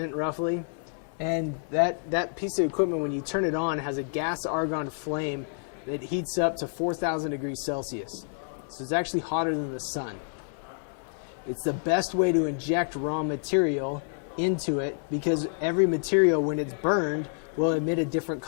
roughly. And that piece of equipment, when you turn it on, has a gas argon flame that heats up to 4,000 degrees Celsius. So it's actually hotter than the sun. It's the best way to inject raw material into it because every material, when it's burned, will emit a different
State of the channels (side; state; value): right; silent; 59 dB below the other